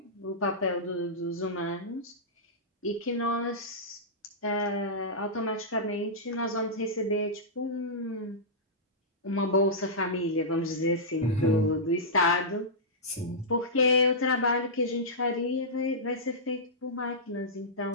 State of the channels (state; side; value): normal; both; correlation -0.14